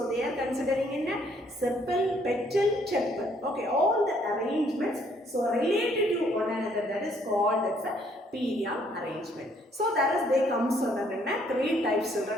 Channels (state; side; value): normal; both; correlation 0.66